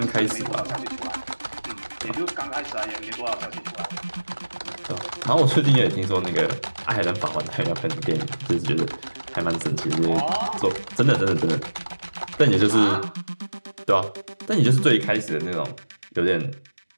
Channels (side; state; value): both; inverted; correlation -1.00